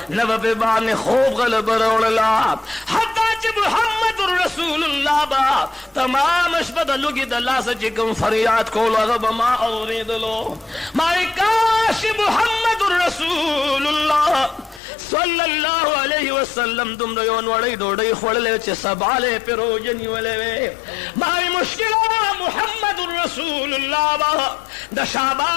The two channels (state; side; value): drops out; right; at 14.8 s